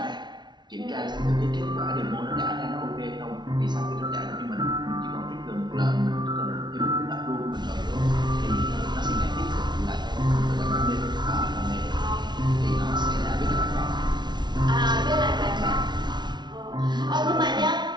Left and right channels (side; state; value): left; late; 0.21 ms